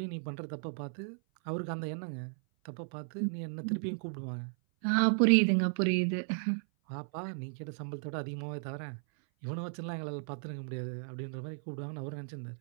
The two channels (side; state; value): left; silent; 55 dB below the other